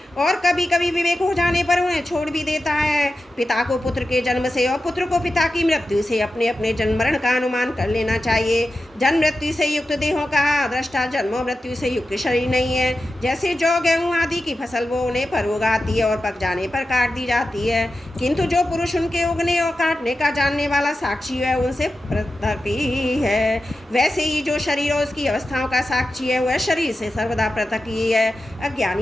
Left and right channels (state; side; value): normal; both; correlation 0.92